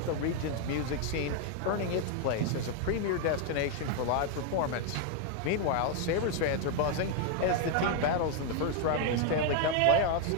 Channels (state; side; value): different; both; correlation 0.00